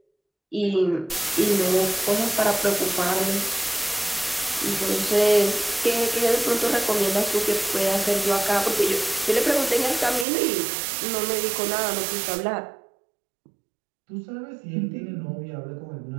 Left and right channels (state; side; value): drops out; left; at 10.2 s